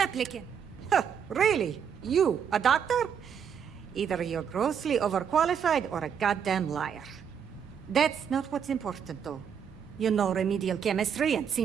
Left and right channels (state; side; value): quieter; left; 7.7 dB